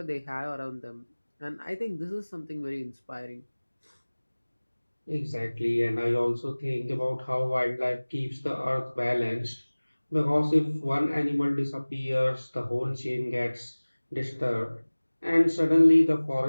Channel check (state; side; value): inverted; both; correlation -1.00